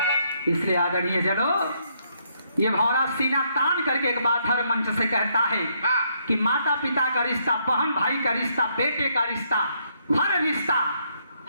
इसलिए आदरणीय जनो ये भौरा सीना तान करके एक बात हर मंच से कहता है कि माता पिता का रिश्ता, बहन भाई का रिश्ता, बेटे का रिश्ता, हर रिश्ता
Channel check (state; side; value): inverted; both; correlation -0.73